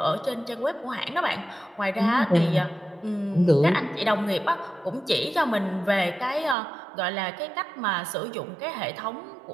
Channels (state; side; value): drops out; left; at 6.6 s